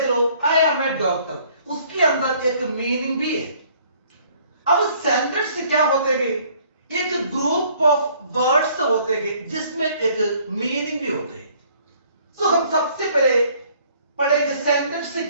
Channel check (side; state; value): both; inverted; correlation -0.60